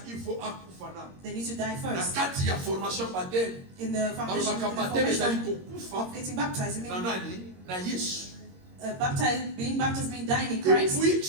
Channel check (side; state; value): left; late; 22 ms